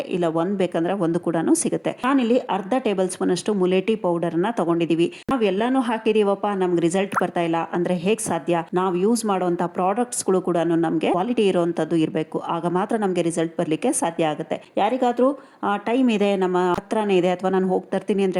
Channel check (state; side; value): identical; both; correlation 1.00